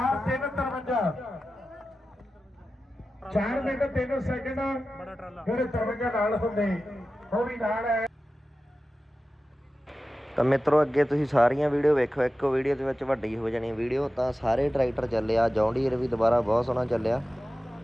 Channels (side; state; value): both; normal; correlation 0.94